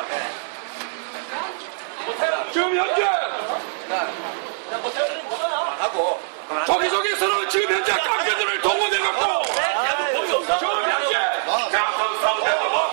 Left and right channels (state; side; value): silent; left; digital silence